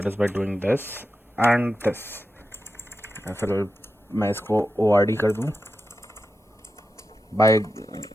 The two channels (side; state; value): both; normal; correlation 0.90